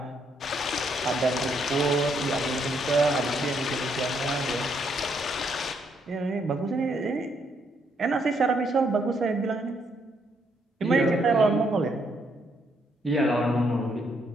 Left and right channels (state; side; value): normal; both; correlation 0.73